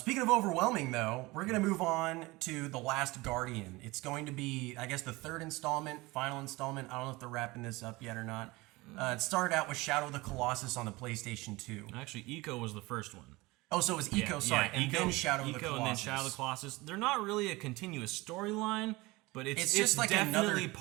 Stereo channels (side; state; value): left; quieter; 21.9 dB